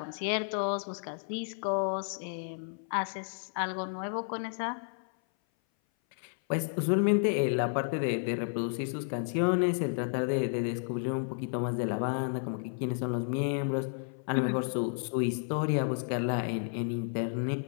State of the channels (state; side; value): silent; right; 57 dB below the other